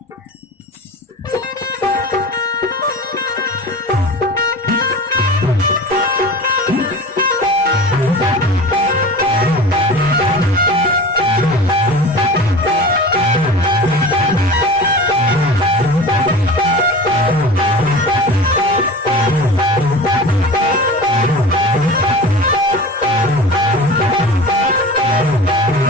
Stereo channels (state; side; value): normal; both; correlation 0.35